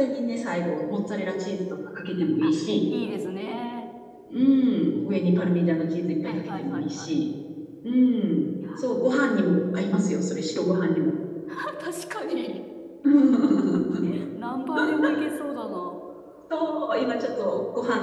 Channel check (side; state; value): both; identical; correlation 1.00